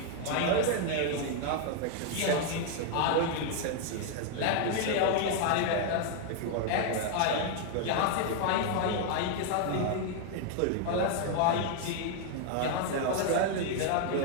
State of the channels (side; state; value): both; different; correlation 0.00